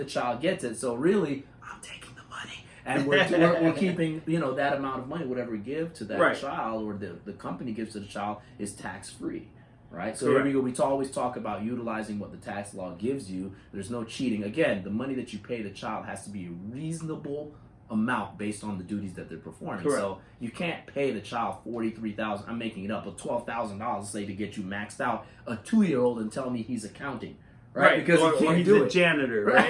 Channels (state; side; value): identical; both; correlation 1.00